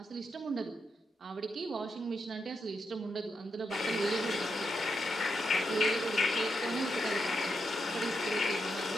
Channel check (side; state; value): both; normal; correlation 0.83